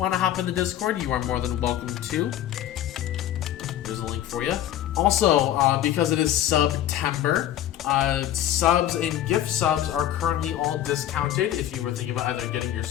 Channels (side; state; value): right; quieter; 11.9 dB